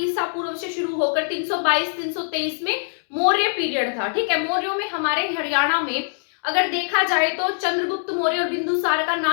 पूर्व से शुरू होकर 322-323 में मौर्य पीरियड था। ठीक है, मौर्यों में हमारे हरियाणा में अगर देखा जाए तो चंद्रगुप्त मौर्य और बिंदुसार का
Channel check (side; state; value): right; silent; digital silence